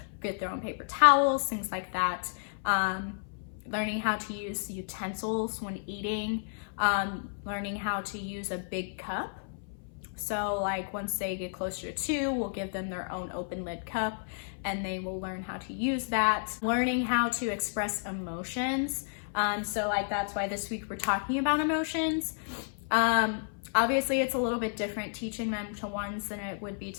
get their own paper towels, things like that. Learning how to use utensils when eating, learning how to use a big cup. So like once they get closer to 2, we'll give them their own open lid cup, and they will learn how to use that. Learning how to express emotions. So like that's why this week we're talking about emotions. Obviously it's a little bit different teaching them to ones than it would be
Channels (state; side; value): silent; right; 57 dB below the other